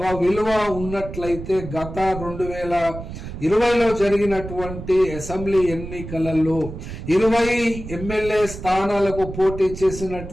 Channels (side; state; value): right; noise; rumble, 10 dB below the sound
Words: విలువ ఉన్నట్లయితే గత 2020లో జరిగినటువంటి అసెంబ్లీ ఎన్నికలలో 20 ఎమ్మెల్యే స్థానాలకు పోటీ